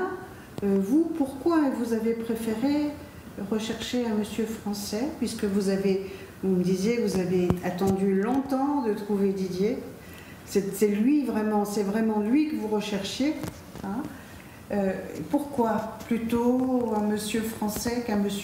vous, pourquoi vous avez préféré rechercher un monsieur français, puisque vous me disiez que vous avez attendu longtemps de trouver Didier. C'est vraiment lui que vous recherchiez. Hein. Pourquoi plutôt un monsieur français qu'un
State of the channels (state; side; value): identical; both; correlation 1.00